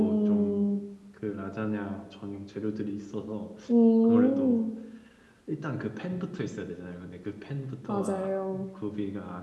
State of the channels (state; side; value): identical; both; correlation 1.00